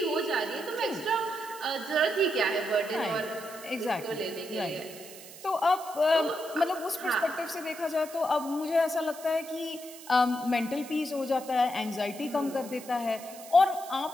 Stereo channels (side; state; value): right; noise; hiss, 16 dB below the sound